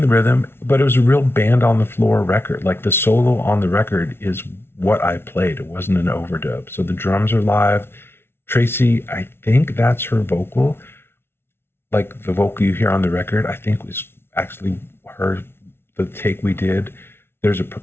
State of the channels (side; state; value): right; late; 0.12 ms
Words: the rhythm, but it was a real band on the floor record. Like the solo on the record is what I played. It wasn't an overdub. So the drums are live. Tracy, I think that's her vocal. Like the vocal you hear on the record, I think was actually the take we did. There's a